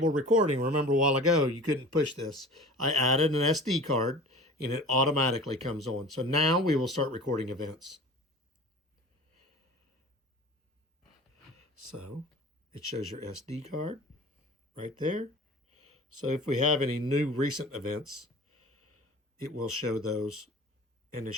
recording, remember a while ago you couldn't push this. I added an SD card and it automatically comes on. So now we will start recording events. So it shows your SD card right there. So if we have any new recent events, it will show those, and it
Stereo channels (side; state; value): both; normal; correlation 0.40